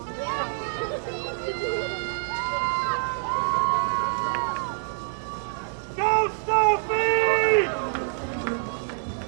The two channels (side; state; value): left; silent; digital silence